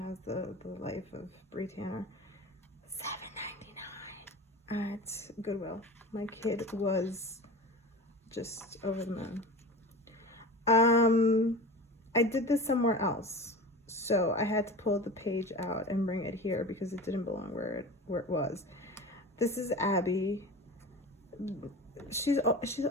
the life of Bree Tanner. $7.99 at Goodwill. My kid was just over the moon. I did this somewhere else, so I had to pull the page out and bring it here because it didn't belong where it was. This is Abby. She's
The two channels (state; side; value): normal; both; correlation 0.33